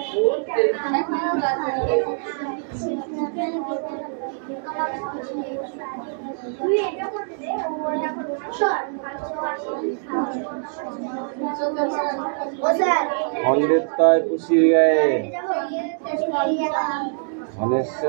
খণ্ডের তয় পুষির গায়ে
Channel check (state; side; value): silent; left; 63 dB below the other